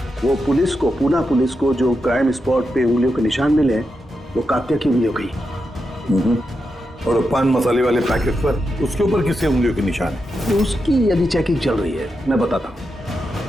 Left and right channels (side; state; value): both; normal; correlation 0.87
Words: वो पुलिस को, पूना पुलिस को जो क्राइम स्पॉट पे उंगलियों के निशान मिले वो कात्या की उंगलियों की। और पान मसाले वाले पैकेट पर उसके ऊपर किसके उंगलियों के निशान है? तो उसकी अभी चेकिंग चल रही है, मैं बताता हूँ।